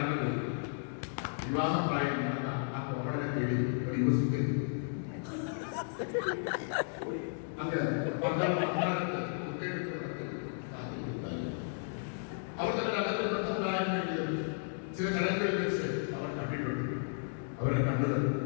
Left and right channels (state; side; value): silent; right; digital silence